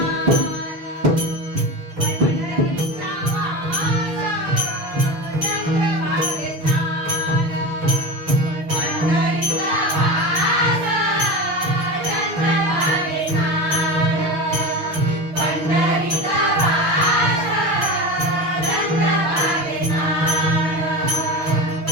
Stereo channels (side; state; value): left; late; 6.5 ms